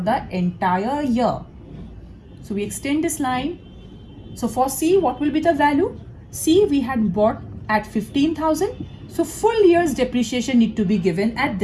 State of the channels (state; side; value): identical; both; correlation 1.00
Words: entire year. So we extend this line. So for C, what will be the value? C we had bought at 15,000. So full year's depreciation need to be given at